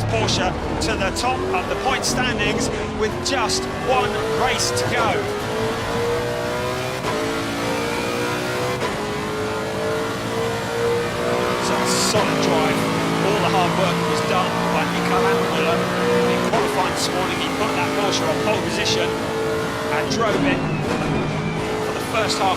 Porsche to the top of the point standings with just 1 race to go. Solid drive. All the hard work was done by Mikael Lammermuller in qualifying this morning. He put that Porsche on pole position and drove it for the first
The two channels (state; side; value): noise; right; hum, 26 dB below the sound